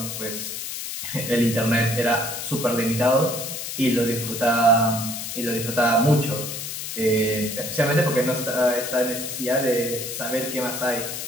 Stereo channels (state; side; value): noise; left; hiss, 6 dB below the sound